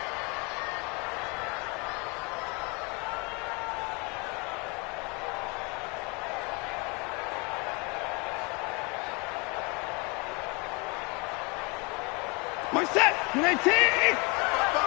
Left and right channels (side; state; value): right; quieter; 29.0 dB